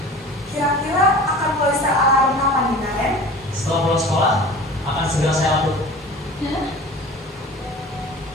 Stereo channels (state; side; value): normal; both; correlation 0.40